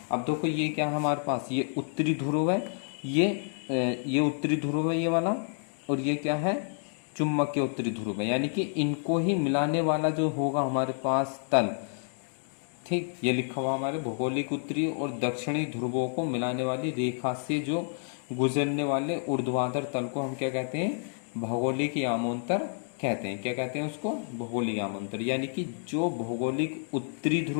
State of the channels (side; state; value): right; silent; digital silence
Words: अब देखो ये क्या है हमारे पास, ये उत्तरी ध्रुव है, ये उत्तरी ध्रुव है ये वाला, और ये क्या है, चुंबकीय उत्तरी ध्रुव है, यानी कि इनको ही मिलाने वाला जो होगा हमारे पास तल, ठीक, ये लिखा हुआ हमारे भौगोलिक उत्तरी और दक्षिणी ध्रुवों को मिलाने वाली रेखा से जो गुजरने वाले ऊर्ध्वाधर तल को हम क्या कहते हैं, भौगोलिक यामोंतर कहते हैं। क्या कहते हैं उसको, भौगोलिक यामोंतर। यानी कि जो भौगोलिक उत्तरी